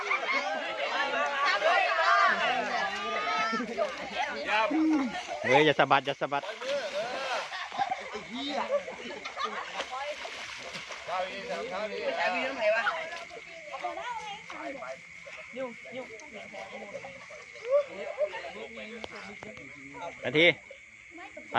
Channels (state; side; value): identical; both; correlation 1.00